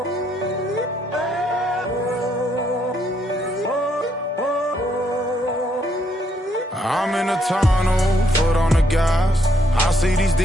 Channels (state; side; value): normal; both; correlation 0.73